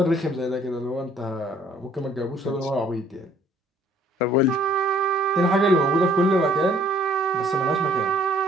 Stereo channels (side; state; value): both; normal; correlation 0.60